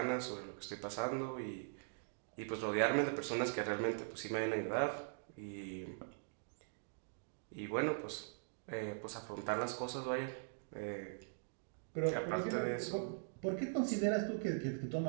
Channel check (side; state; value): left; silent; digital silence